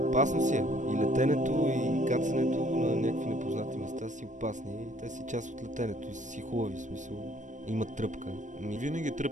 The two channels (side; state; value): left; late; 0.36 ms